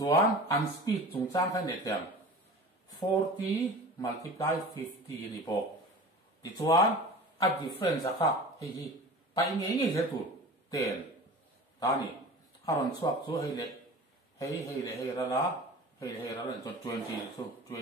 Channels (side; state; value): both; normal; correlation 0.37